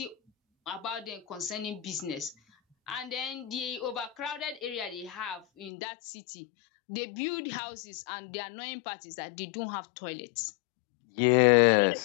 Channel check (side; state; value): right; drops out; at 5.7 s